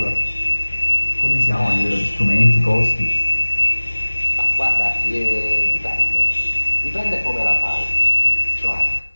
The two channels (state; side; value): inverted; both; correlation -1.00